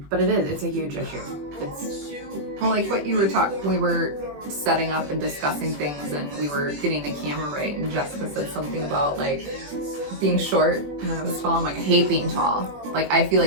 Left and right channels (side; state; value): left; late; 21 ms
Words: But it's a huge issue. Well, like what you were we were setting up and discussing things, and we were getting the camera right, and Jessica said something about like being short and I was tall. I'm like, I hate being tall. Like, I feel